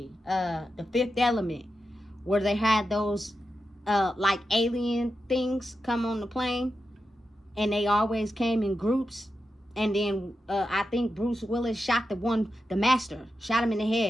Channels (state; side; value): normal; both; correlation 0.89